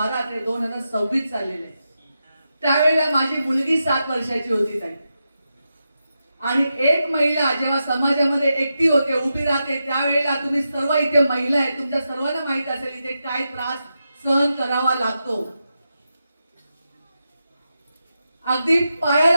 ते 2026 चाललेले. त्यावेळेला माझी मुलगी 7 वर्षाची होती ताई. आणि एक महिला जेव्हा समाजामध्ये एकटी होते, उभी राहते, त्यावेळेला तुम्ही सर्व इथे महिला आहे, तुमच्या सर्वांना माहित असेल इथे काय त्रास सहन करावा लागतो. अगदी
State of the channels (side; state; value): both; inverted; correlation -0.88